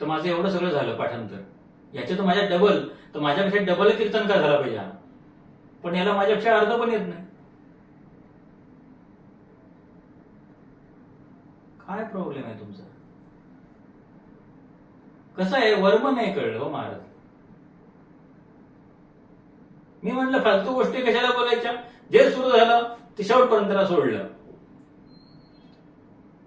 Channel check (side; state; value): both; identical; correlation 1.00